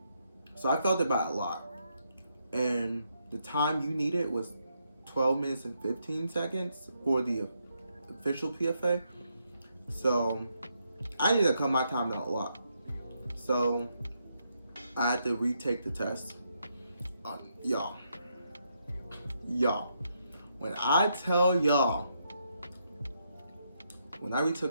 So I failed it by a lot. And the time you needed was 12 minutes and 15 seconds for the official PFA. So I needed to cut my time down a lot. So I had to retake the test. Y'all, when I tell y'all, when I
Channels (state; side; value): inverted; both; correlation -0.79